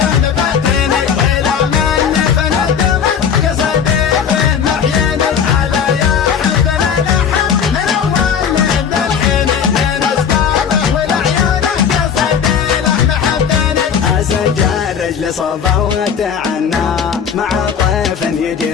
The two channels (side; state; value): right; quieter; 7.4 dB